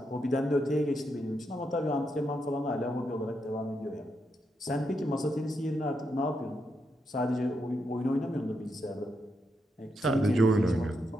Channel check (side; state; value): both; normal; correlation 0.82